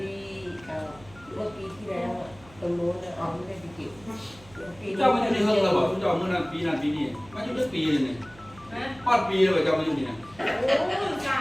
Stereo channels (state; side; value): noise; right; hum, 23 dB below the sound